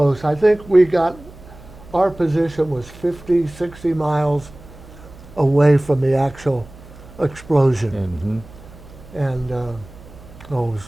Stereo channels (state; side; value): noise; right; hum, 19 dB below the sound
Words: I think our position was 50, 60 miles away from the actual explosion. Mm-hmm. And it